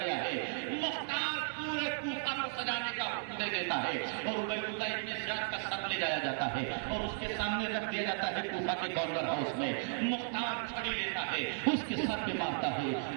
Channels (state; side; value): silent; left; digital silence